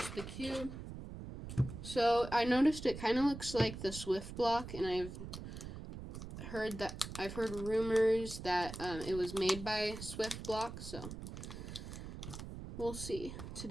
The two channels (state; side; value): noise; right; rumble, 9 dB below the sound